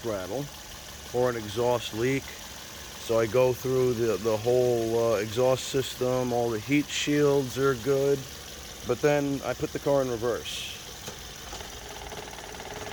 rattle or an exhaust leak. So I go through the whole exhaust system, all the heat shields are good, but then I put the car in reverse.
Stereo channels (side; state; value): both; identical; correlation 1.00